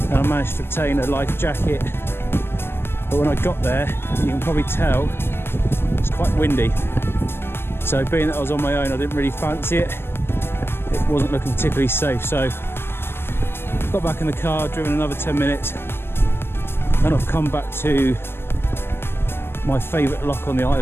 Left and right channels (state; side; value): late; right; 0.11 ms